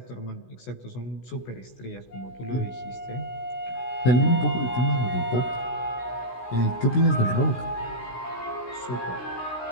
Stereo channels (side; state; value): right; late; 16 ms